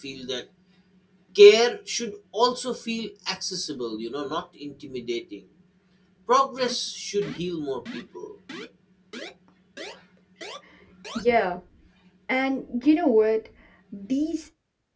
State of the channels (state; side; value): identical; both; correlation 1.00